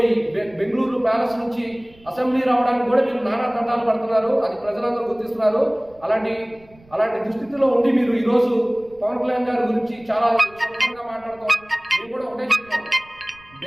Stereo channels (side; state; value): right; noise; rumble, 27 dB below the sound